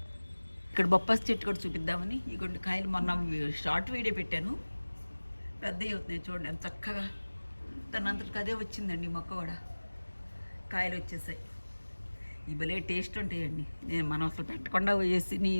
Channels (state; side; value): inverted; both; correlation -1.00